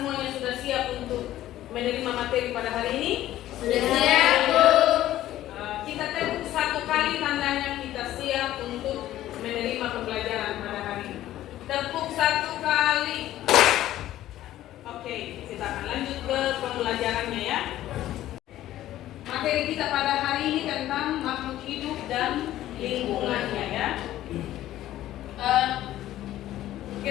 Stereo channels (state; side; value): quieter; right; 13.8 dB